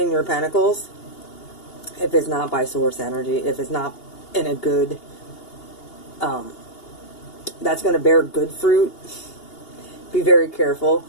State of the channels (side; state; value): right; late; 2.8 ms